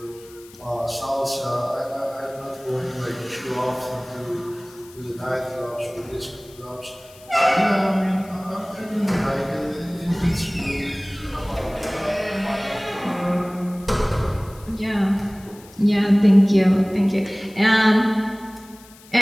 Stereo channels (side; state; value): left; noise; hiss, 23 dB below the sound